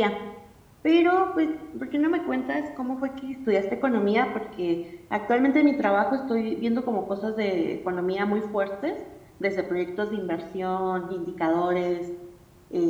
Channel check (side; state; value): both; identical; correlation 1.00